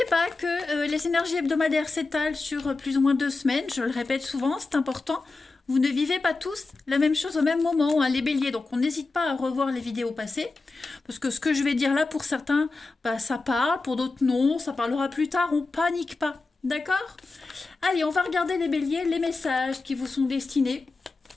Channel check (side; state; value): right; quieter; 3.6 dB